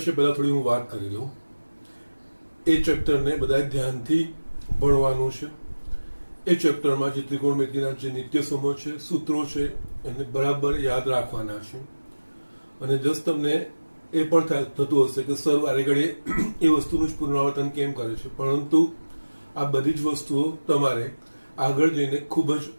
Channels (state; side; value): inverted; both; correlation -1.00